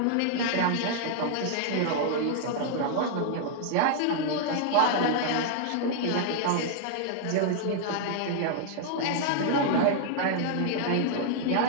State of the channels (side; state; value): both; different; correlation 0.00